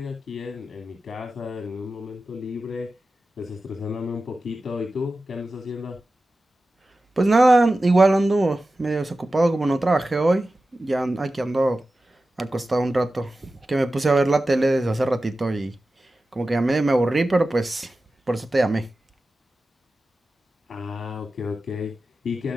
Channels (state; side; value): normal; both; correlation 0.94